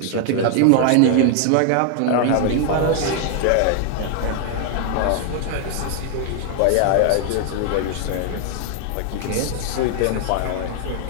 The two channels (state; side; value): different; both; correlation 0.00